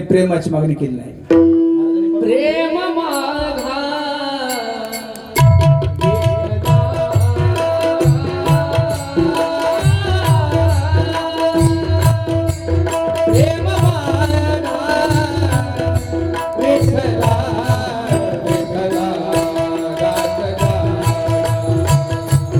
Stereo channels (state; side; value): identical; both; correlation 1.00